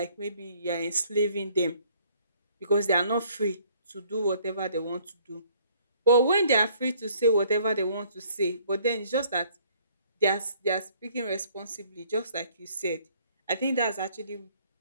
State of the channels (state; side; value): inverted; both; correlation -0.61